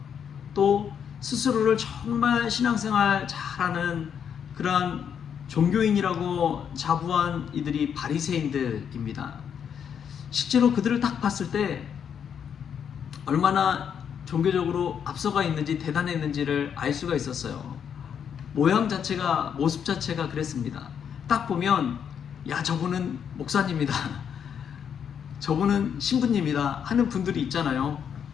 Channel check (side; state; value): right; quieter; 7.9 dB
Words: 또 스스로를 정말 신앙생활 잘하는 그러한 종교인이라고 자부한 이들이 바리새인들입니다. 실제로 그들을 딱 봤을 때 얼마나 종교적으로 앞서가 있는지 대단했는지를 알 수가 있었어요. 모양 자체가, 모습 자체가 그랬습니다. 딱 보면 야, 저분은 목사님이다, 저분은 신부님이다 하는 분들이 있잖아요.